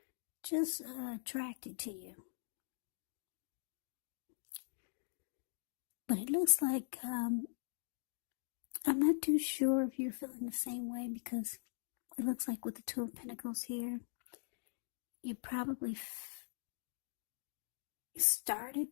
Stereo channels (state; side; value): silent; right; digital silence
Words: just attracted to you. But it looks like, I'm not too sure if you're feeling the same way, because it looks like with the Two of Pentacles here, you probably